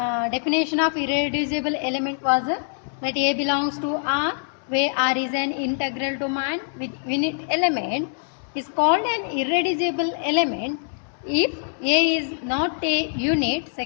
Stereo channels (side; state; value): right; silent; digital silence